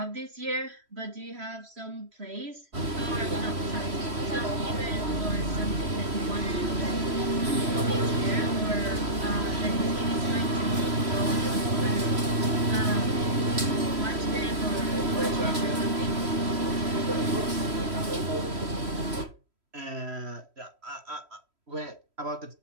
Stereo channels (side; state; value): left; late; 3.1 ms